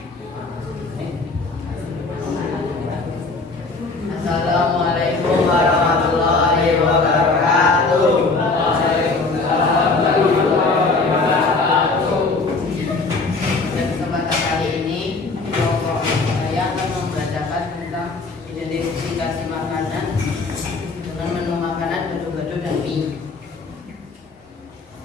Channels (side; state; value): right; quieter; 3.7 dB